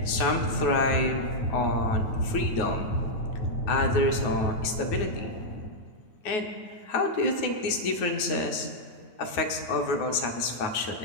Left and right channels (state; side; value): late; right; 9.4 ms